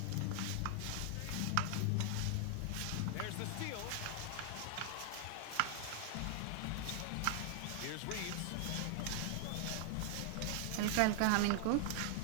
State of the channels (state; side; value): different; both; correlation 0.00